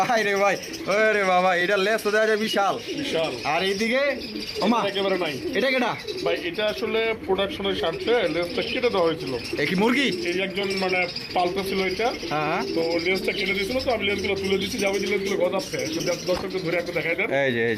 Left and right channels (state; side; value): identical; both; correlation 1.00